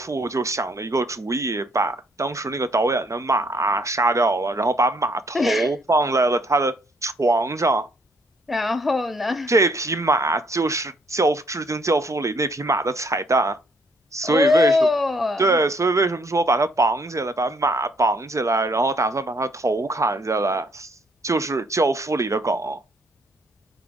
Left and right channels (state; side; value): normal; both; correlation 0.66